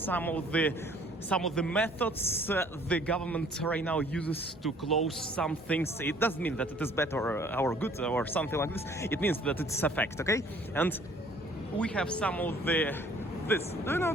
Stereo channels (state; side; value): normal; both; correlation 0.56